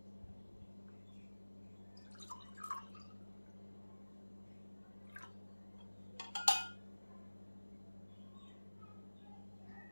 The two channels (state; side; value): inverted; both; correlation -1.00